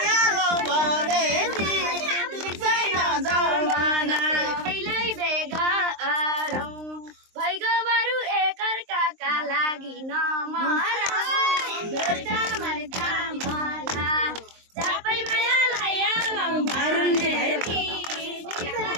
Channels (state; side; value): late; left; 23 ms